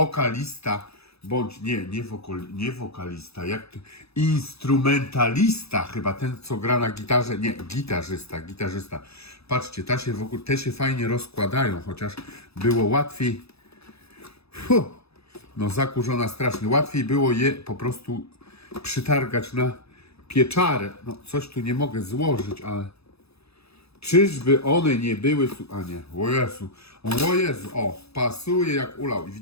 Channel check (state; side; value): late; right; 0.78 ms